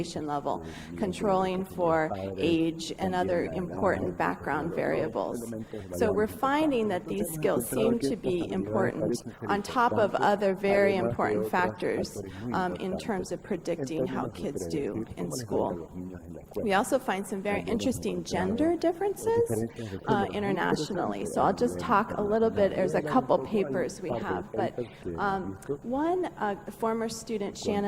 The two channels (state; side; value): identical; both; correlation 1.00